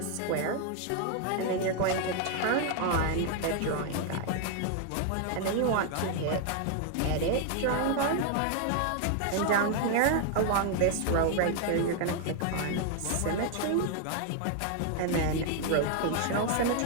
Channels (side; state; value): both; different; correlation 0.00